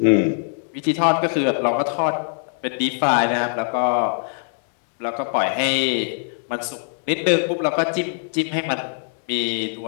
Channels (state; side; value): silent; right; digital silence